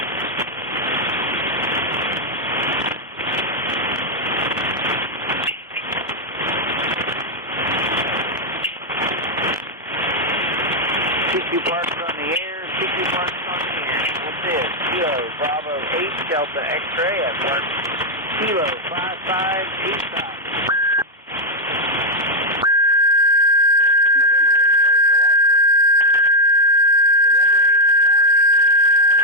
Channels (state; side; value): normal; both; correlation 0.00